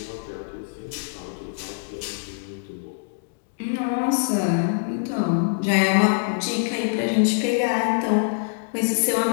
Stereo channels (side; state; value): right; silent; digital silence